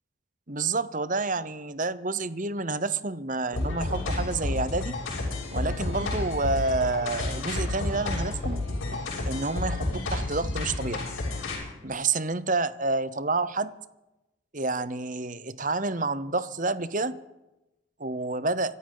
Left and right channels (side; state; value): both; normal; correlation 0.09